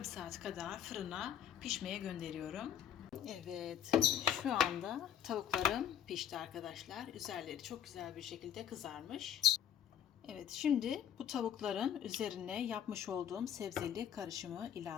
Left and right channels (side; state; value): right; quieter; 9.7 dB